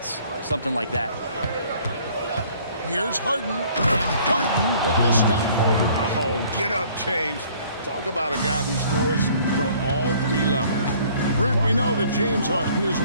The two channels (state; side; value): inverted; both; correlation -0.57